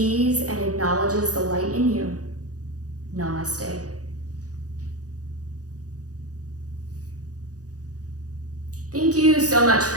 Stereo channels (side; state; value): left; late; 0.67 ms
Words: and acknowledges the light in you. Namaste. Thank you so much